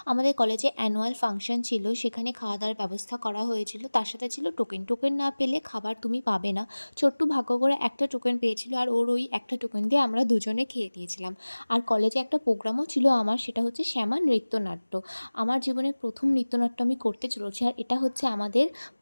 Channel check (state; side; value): inverted; both; correlation -1.00